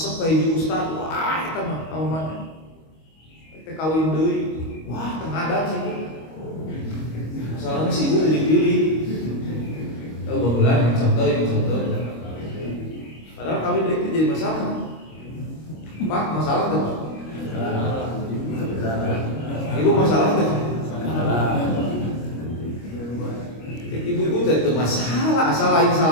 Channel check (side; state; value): right; late; 25 ms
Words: kayak di ustad, wah kita mah kamu mana? Kita kawin deui, wah tengah ada sih. Masalahnya si ibu pilih-pilih. Oh bagulan, contoh. Padahal kawin deui itu jadi masalah. Pak, masalah tuh. Ibu masalah tuh. Ibu-ibu itu masalah, asal lain